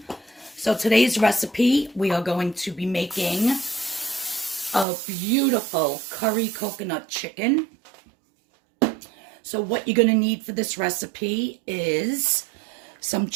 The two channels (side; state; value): left; drops out; at 4.9 s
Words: So today's recipe, we are going to be making a beautiful curry coconut chicken. So what you're going to need for this recipe is some